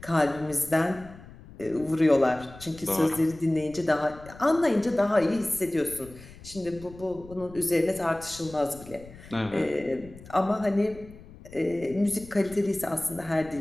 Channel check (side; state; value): left; noise; rumble, 19 dB below the sound